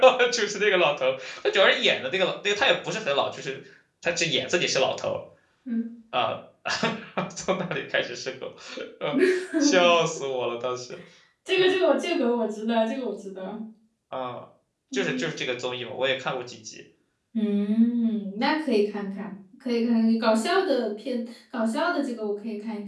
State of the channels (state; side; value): identical; both; correlation 1.00